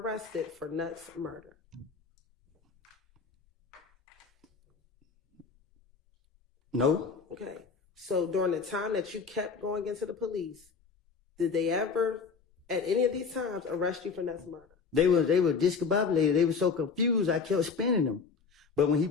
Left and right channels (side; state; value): right; quieter; 5.4 dB